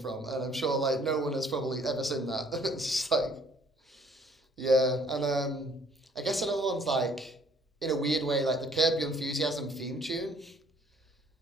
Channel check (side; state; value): both; normal; correlation 0.60